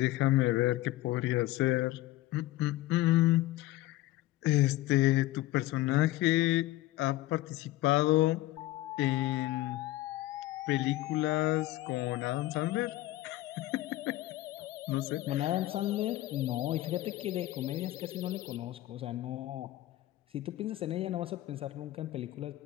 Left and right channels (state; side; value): quieter; right; 16.6 dB